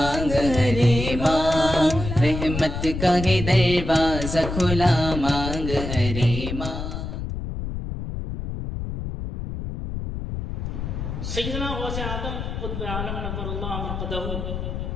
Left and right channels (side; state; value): left; noise; rumble, 5 dB below the sound